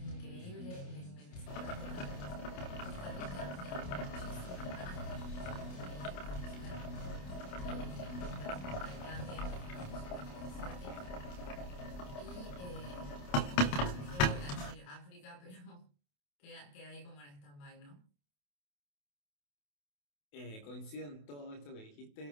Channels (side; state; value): right; late; 28 ms